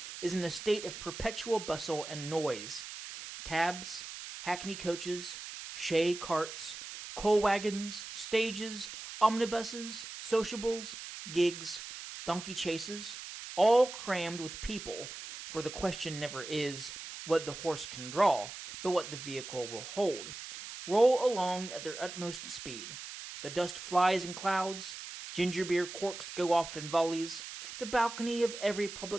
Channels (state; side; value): noise; right; hiss, 10 dB below the sound